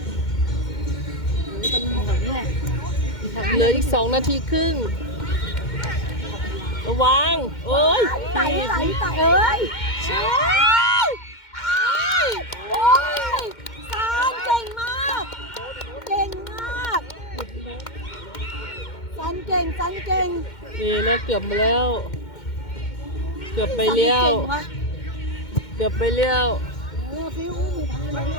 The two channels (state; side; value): late; right; 2.1 ms